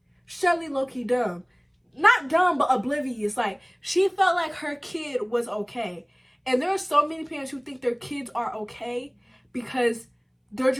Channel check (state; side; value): identical; both; correlation 1.00